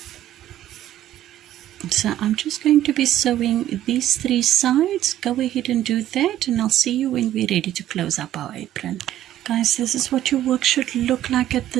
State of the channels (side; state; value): left; quieter; 12.7 dB